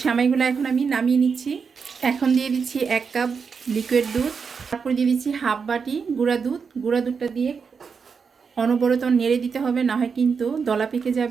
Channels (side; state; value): left; quieter; 5.7 dB